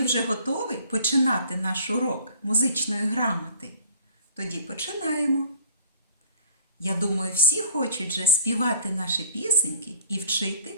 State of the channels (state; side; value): inverted; both; correlation -0.51